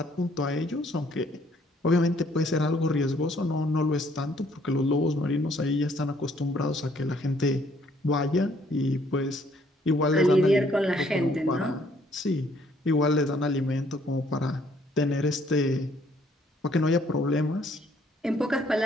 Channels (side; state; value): both; normal; correlation 0.64